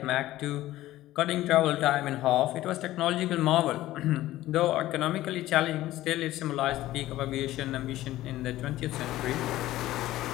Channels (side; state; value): right; quieter; 15.4 dB